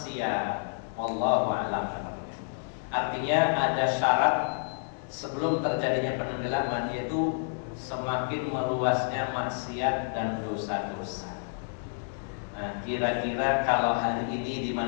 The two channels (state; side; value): silent; right; digital silence